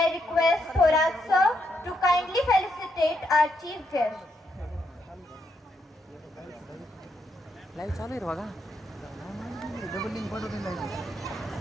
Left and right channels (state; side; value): normal; both; correlation 0.79